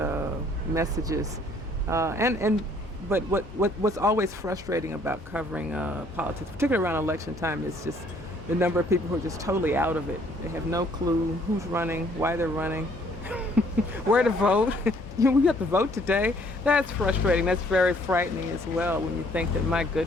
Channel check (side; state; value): both; normal; correlation 0.62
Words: messages, but what's always frustrating about covering politics, particularly around election time, is just the number of people who are just totally out of it. They have no clue who's running, why they're running, where to vote. We have to vote today. That's frustrating. That's very frightening as well when you think that, my